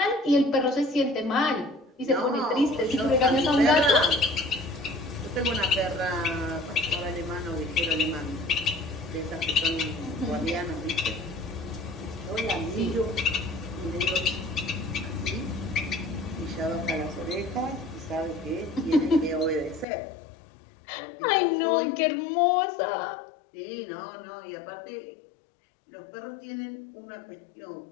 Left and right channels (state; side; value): drops out; right; at 19.9 s